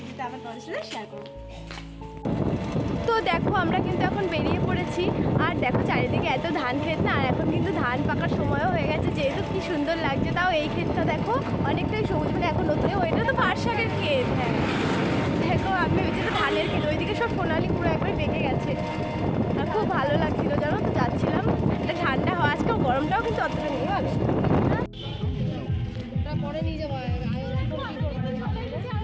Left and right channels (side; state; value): both; identical; correlation 1.00